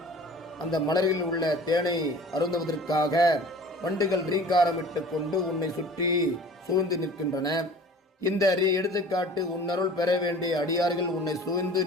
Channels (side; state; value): both; normal; correlation 0.44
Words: அந்த மலரில் உள்ள தேனை அருந்துவதற்காக வண்டுகள் ரீங்காரமிட்டு கொண்டு உன்னை சுற்றி சூழ்ந்து நிற்கின்றன. இந்த எடுத்துக்காட்டு உன்னருள் பெற வேண்டிய அடியார்கள் உன்னை சூழ்ந்து